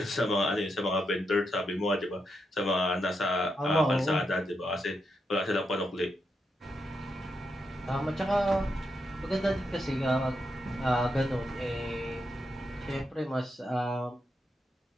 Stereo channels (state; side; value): normal; both; correlation 0.83